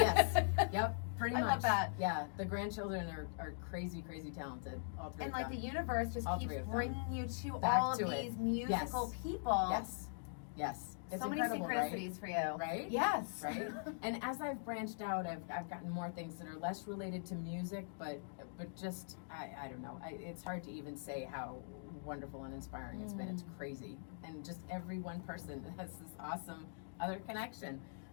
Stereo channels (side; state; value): right; silent; digital silence